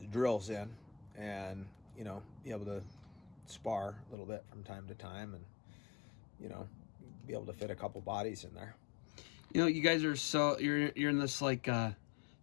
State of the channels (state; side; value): drops out; right; at 4.2 s